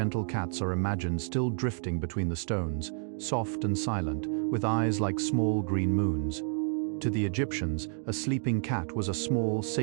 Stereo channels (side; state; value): left; silent; 58 dB below the other